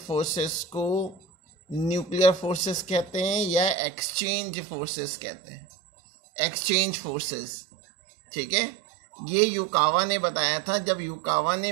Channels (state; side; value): drops out; left; at 3.8 s